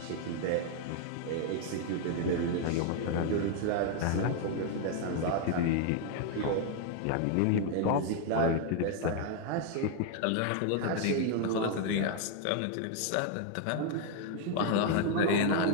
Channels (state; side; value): different; both; correlation 0.00